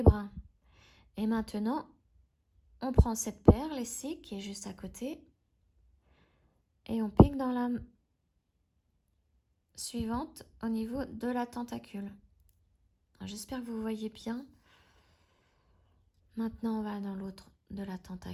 brins. Et maintenant, on prend cette perle ici, qui est juste à côté, et on pique dans la suivante au niveau de la tentacule. J'espère que vous voyez bien. Maintenant, on va dans l'autre de la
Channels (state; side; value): identical; both; correlation 1.00